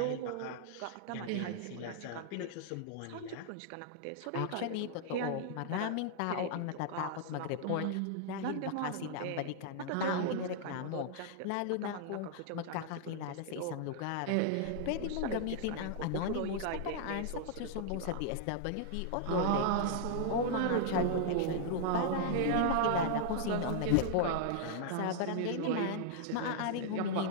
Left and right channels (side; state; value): both; different; correlation -0.01